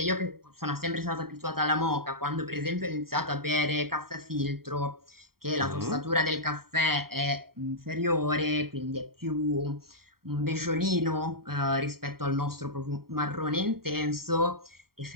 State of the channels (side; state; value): left; late; 0.93 ms